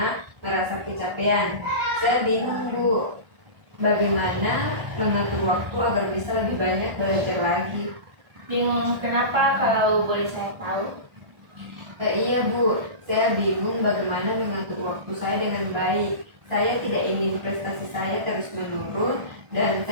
merasa kecapean. Saya bingung Bu, bagaimana mengatur waktu agar bisa lebih banyak belajar lagi. Bingung kenapa kalau boleh saya tahu? Iya Bu, saya bingung bagaimana mengatur waktu saya dengan baik. Saya tidak ingin prestasi saya terus menurun, dan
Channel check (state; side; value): late; left; 1.4 ms